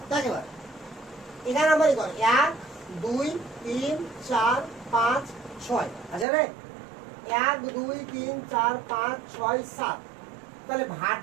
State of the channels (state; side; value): drops out; left; at 6.2 s